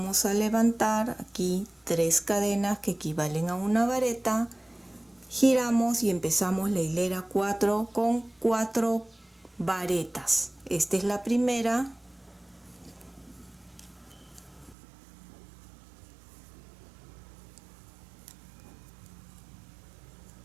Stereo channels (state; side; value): drops out; left; at 14.8 s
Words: a levantar aquí 3 cadenas que equivalen a una vareta. Giramos y empezamos la hilera 4 con 4 varetas. Esta es la primera.